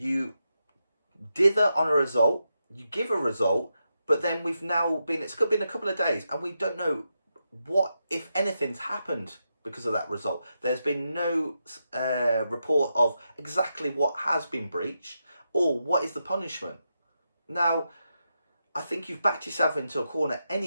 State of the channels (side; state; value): both; inverted; correlation -0.86